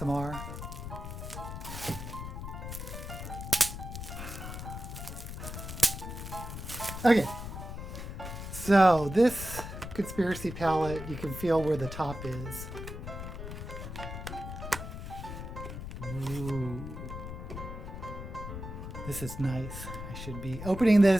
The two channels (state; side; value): noise; left; rumble, 8 dB below the sound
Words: Okay. So this Conspiracy Palette, you can feel where the top is. Ooh. This is nice. I should be opening